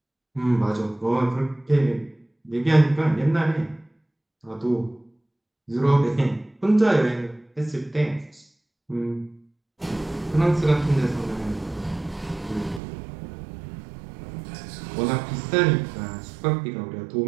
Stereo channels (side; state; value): left; drops out; at 12.8 s